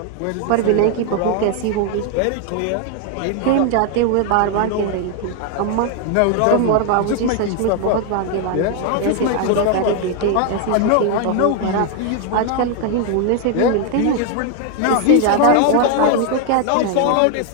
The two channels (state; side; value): different; both; correlation 0.00